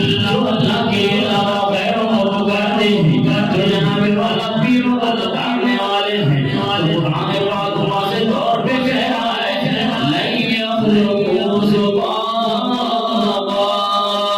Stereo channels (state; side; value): identical; both; correlation 1.00